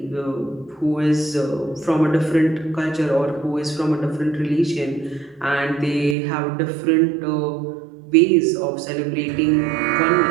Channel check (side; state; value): left; drops out; at 6.2 s